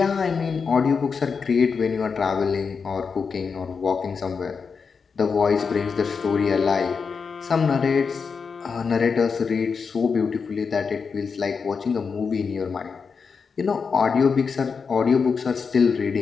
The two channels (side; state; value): right; quieter; 5.5 dB